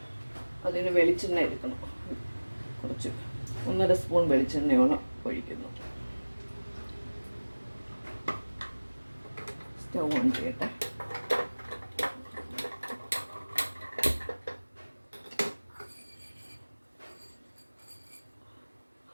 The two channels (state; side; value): inverted; both; correlation -1.00